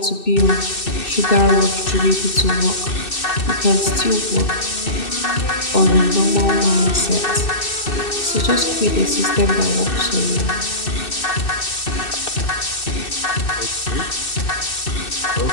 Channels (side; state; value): right; late; 2.6 ms